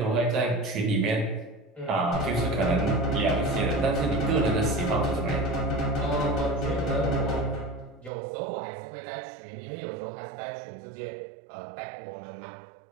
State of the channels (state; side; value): drops out; left; at 8.1 s